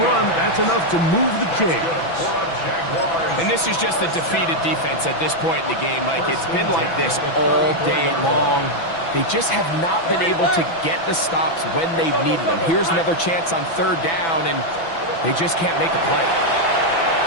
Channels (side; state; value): right; late; 6.0 ms